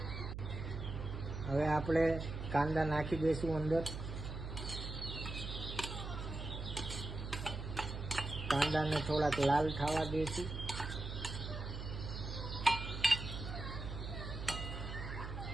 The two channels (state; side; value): noise; right; hum, 6 dB below the sound